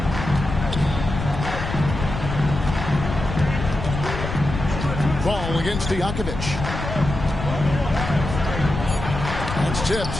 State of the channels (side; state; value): left; noise; rumble, 6 dB below the sound